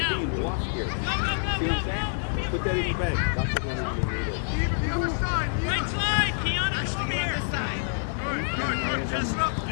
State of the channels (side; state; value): right; silent; digital silence